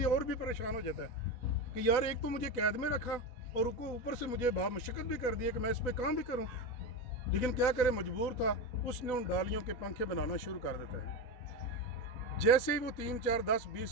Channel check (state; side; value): late; right; 4.1 ms